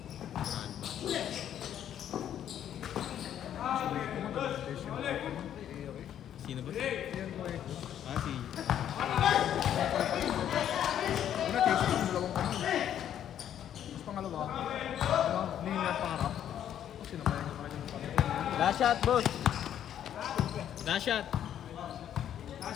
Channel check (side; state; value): right; quieter; 10.3 dB